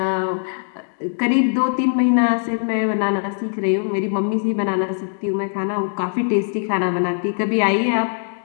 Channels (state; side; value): silent; right; digital silence